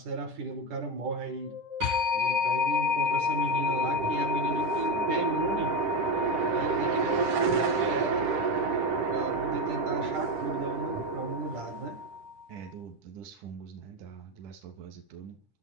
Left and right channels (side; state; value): left; late; 10 ms